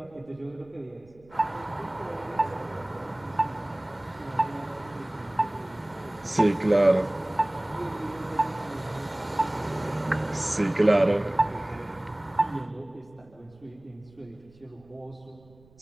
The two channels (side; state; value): right; noise; rumble, 27 dB below the sound